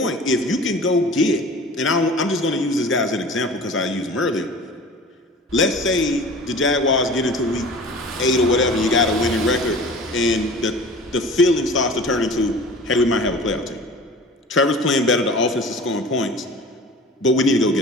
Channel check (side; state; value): both; normal; correlation 0.41